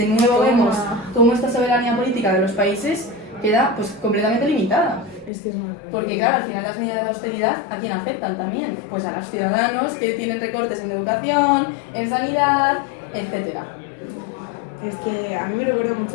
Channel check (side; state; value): right; drops out; at 5.3 s